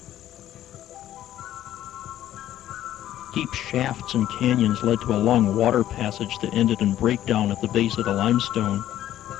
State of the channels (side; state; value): right; quieter; 12.5 dB